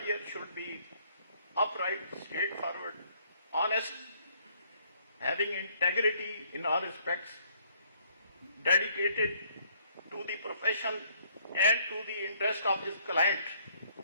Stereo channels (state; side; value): inverted; both; correlation -0.65